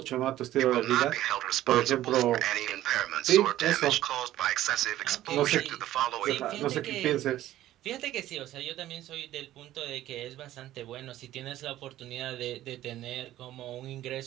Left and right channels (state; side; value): quieter; left; 14.0 dB